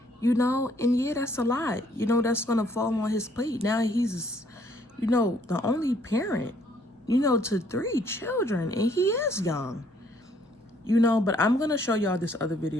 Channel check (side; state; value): both; normal; correlation 0.64